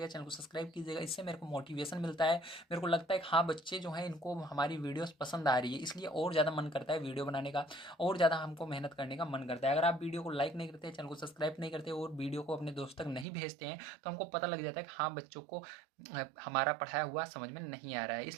चैनल को सब्सक्राइब कीजिएगा, इससे मेरे को मोटिवेशन मिलता है। मेरे को लगता है कि हाँ बच्चे जो हैं इनको हमारी वीडियोस पसंद आ रही है, इसलिए और ज़्यादा मन करता है वीडियो बनाने का, और ज़्यादा हमको मेहनत करने का मन करता है। अगर आप वीडियो को लाइक नहीं करते, चैनल को सब्सक्राइब नहीं करते और वीडियो को अपने दोस्तों तक नहीं भेजते हैं, तो हमको पता लग जाता है कि हाँ बच्चों को हमारा पढ़ाया हुआ समझ में नहीं आ रहा है।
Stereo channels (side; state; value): left; drops out; at 13.2 s